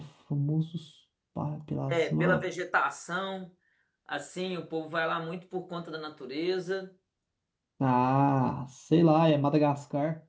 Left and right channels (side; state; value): both; identical; correlation 1.00